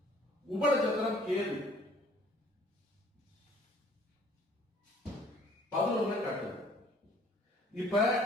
உப நட்சத்திரம் கேது 11 காட்டுது. இப்ப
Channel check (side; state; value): both; normal; correlation 0.56